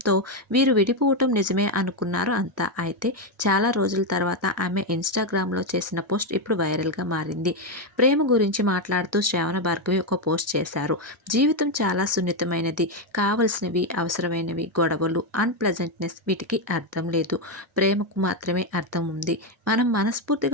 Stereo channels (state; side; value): normal; both; correlation 0.06